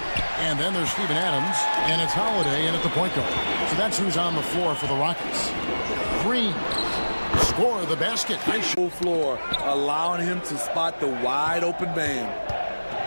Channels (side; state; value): both; inverted; correlation -1.00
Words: And then there's Steven Adams, and it's Holiday in at the point guard. So that's who's on the floor for the Rockets. Green, score the basket. Full floor, allowing him to spot the wide open man.